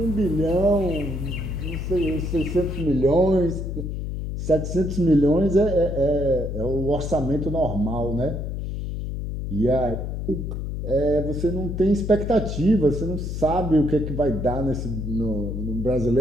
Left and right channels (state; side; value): noise; left; hum, 4 dB below the sound